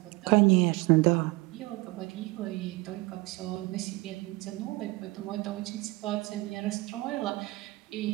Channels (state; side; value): quieter; left; 22.7 dB